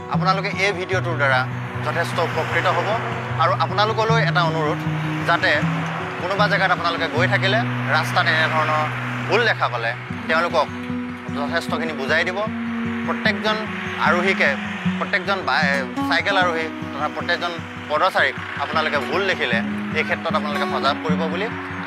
আপোনালোকে এই ভিডিঅ'টোৰ দ্বাৰা যথেষ্ট উপকৃত হ'ব। আৰু আপোনালোকলৈ এটা অনুৰোধ, যাতে কোনোবা জেগাত আপোনালোকে গৈ থাকিলে ৰাস্তাত এনেধৰণৰ ভুল দেখা পালে তেওঁলোকক যথেষ্টখিনি বুজাই দিব। প্ৰত্যেকজন আৰোহীকে, প্ৰত্যেকজন চাইকেল আৰোহী তথা প্ৰত্যেকজন পদচাৰীক আপোনালোকে ভুল দেখিলে এই ক্ষেত্ৰত আপোনালোকে সজাগ কৰিব বুলি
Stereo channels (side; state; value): both; identical; correlation 1.00